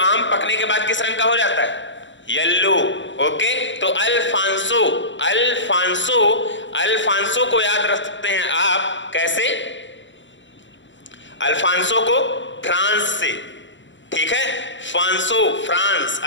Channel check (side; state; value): right; late; 0.54 ms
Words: पकने के बाद किस रंग का हो जाता है? Yellow, okay. तो अल्फांसो, अल्फांसो अल्फांसो को याद रख सकते हैं आप कैसे? अल्फांसो को फ्रांस से, ठीक है, फांसो फ्रांस,